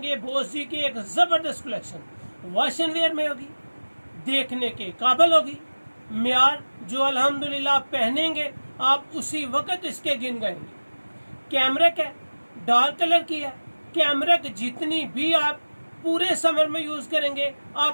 बोस जी की एक जबरदस्त कलेक्शन। वॉशन वेयर में होगी, देखने के काबिल होगी, म्यार जो अल्हम्दुलिल्लाह पहनेंगे आप उसी वक्त इसके गिन गाएंगे। कैमरिक है, डार्क कलर की है। कैमरिक जितनी भी आप पूरे समर में यूज करेंगे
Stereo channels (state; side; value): inverted; both; correlation -1.00